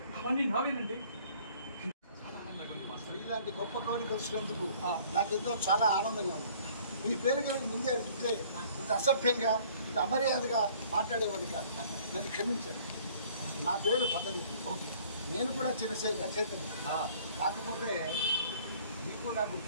నావేనండి. ఇలాంటి గొప్ప కవిని కలిసినందుకు నాకెంతో చాలా ఆనందంగా ఉంది. మీ పేరు కనుక ముందే అడిగితే ఇంత అసభ్యంగా ఇంత అమర్యాదగా మాట్లాడేవాడిని కాదు, నన్ను క్షమించండి. నా పేరు పతంజలి. నేను కూడా చిన్న రచయితని, కాకపోతే మీకు నాకు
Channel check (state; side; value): inverted; both; correlation -0.55